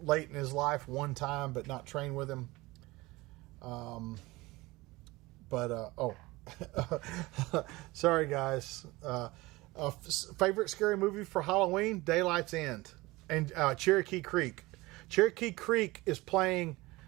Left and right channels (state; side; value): quieter; left; 21.1 dB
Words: in his life one time, but not train with him. Sorry guys. Favorite scary movie for Halloween? Daylight's End and Cherokee Creek. Cherokee Creek is playing